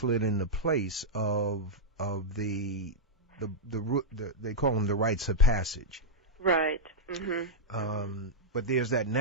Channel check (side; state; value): both; normal; correlation -0.04